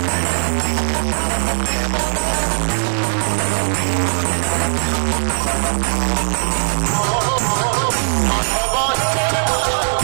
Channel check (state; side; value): silent; left; digital silence